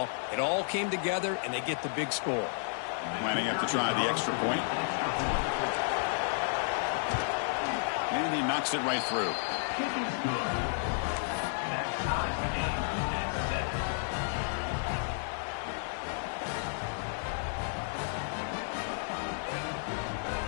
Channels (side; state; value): right; silent; digital silence